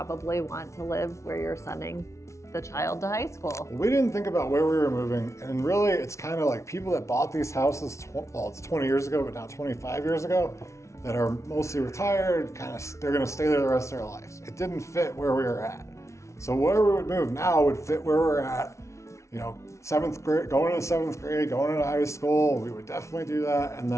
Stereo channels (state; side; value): late; right; 0.14 ms